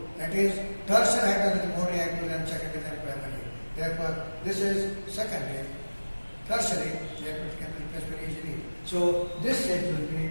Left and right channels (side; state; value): both; inverted; correlation -1.00